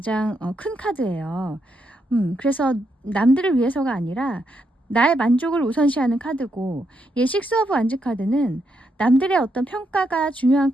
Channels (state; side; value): normal; both; correlation 0.80